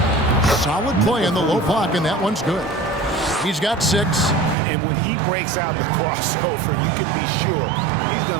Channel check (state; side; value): drops out; left; at 4.5 s